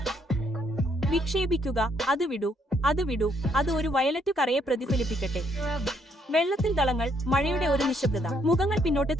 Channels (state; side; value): normal; both; correlation 0.71